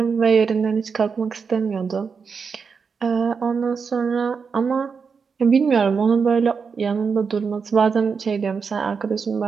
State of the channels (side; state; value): left; quieter; 5.6 dB